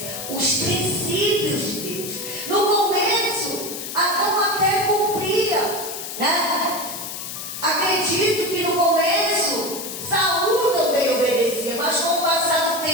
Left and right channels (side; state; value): left; noise; hiss, 8 dB below the sound